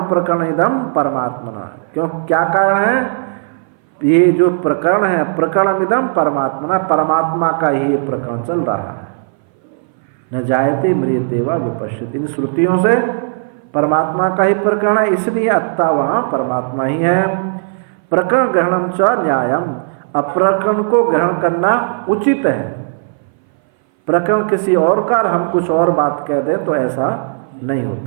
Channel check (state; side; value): silent; left; 59 dB below the other